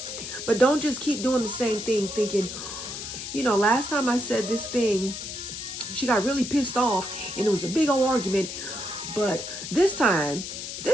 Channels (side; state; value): left; noise; hiss, 7 dB below the sound